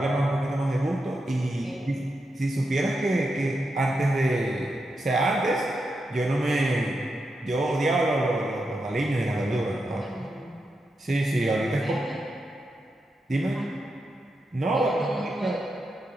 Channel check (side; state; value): both; normal; correlation 0.86